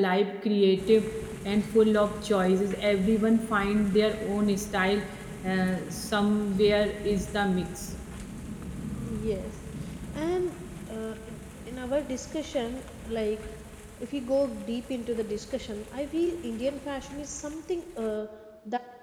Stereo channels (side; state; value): both; identical; correlation 1.00